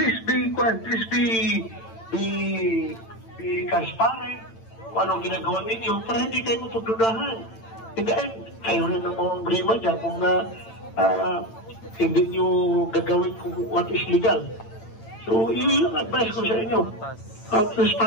be transparent kung anong ginagawa ninyo para hindi kayo mapagdudahan. Hindi kayo rin ang mga brima dyan kung hindi nyo gagawin kung what is legal. So yung advice ko sa inyo,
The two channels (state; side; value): late; right; 8.9 ms